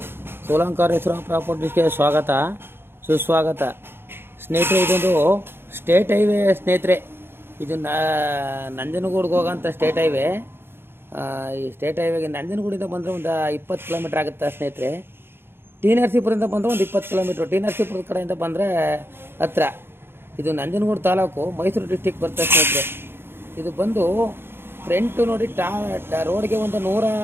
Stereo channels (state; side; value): late; left; 0.11 ms